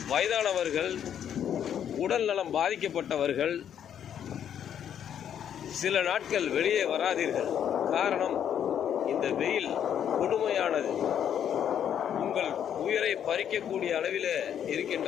வயதானவர்கள், உடல் நலம் பாதிக்கப்பட்டவர்கள் சில நாட்கள் வெளியே வராதீர்கள். காரணம், இந்த வெயில் கொடுமையானது. உங்கள் உயிரை பறிக்கக்கூடிய அளவில் இருக்கின்ற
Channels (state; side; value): quieter; right; 9.3 dB